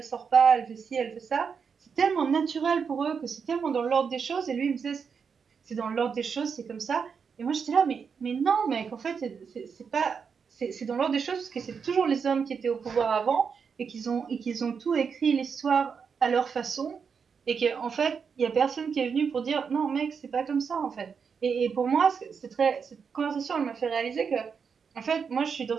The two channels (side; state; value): left; quieter; 6.1 dB